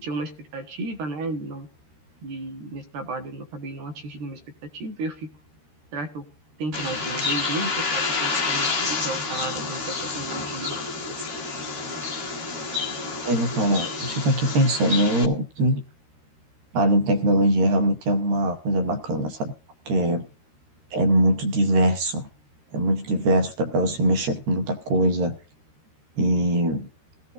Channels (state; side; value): late; left; 13 ms